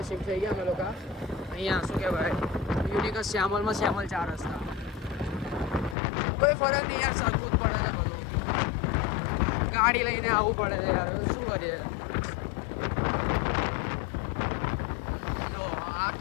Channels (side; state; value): right; drops out; at 6.0 s